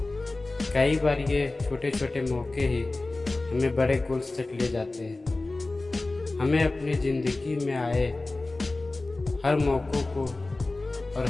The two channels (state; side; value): quieter; right; 3.1 dB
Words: कई बार ये छोटे छोटे मौके ही हमें बड़े गोल्स तक ले जाते हैं। हमें अपनी ज़िंदगी में आए हर मौक़ों को और